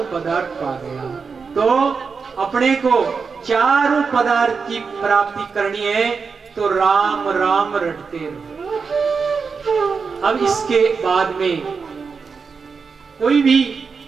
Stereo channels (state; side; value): quieter; left; 5.3 dB